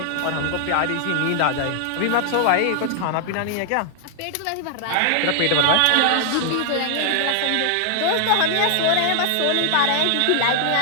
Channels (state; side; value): different; both; correlation 0.00